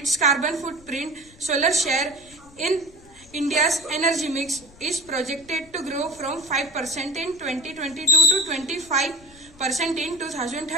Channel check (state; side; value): noise; left; rumble, 24 dB below the sound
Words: carbon footprint. Solar share in India's energy mix is projected to grow from 5% in 2022 to 25% in